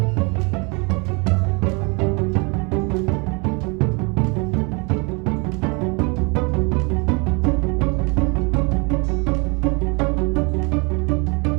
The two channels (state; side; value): quieter; left; 31.1 dB